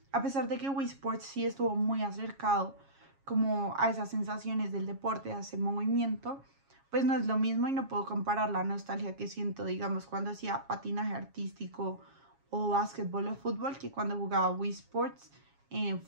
a pesar de que Wii Sports sí estuvo muy acercado como a esas sensaciones del deporte, a ese movimiento, pues no es lo mismo y no puedo comparar la nostalgia que siento, digamos, cuando hacía patinaje artístico o básquetbol o fútbol que cuando jugaba Wii Sports en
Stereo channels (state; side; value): late; left; 7.3 ms